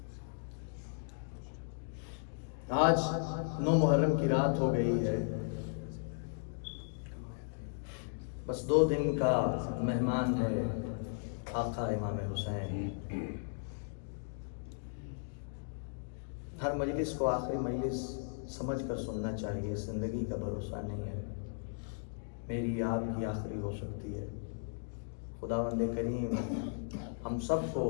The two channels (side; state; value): right; silent; digital silence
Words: آج 9 محرم کی رات ہو گئی ہے، بس 2 دن کا مہمان ہے آقا امام حسین۔ ہر مجلس کو آخری مجلس سمجھ کر سننا چاہیے، زندگی کا بھروسہ نہیں ہے، میری آپ کی آخری ہو سکتی ہے۔ خداوند کریم ہم سب کو